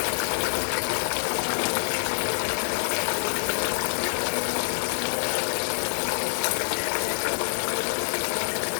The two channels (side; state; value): right; silent; 61 dB below the other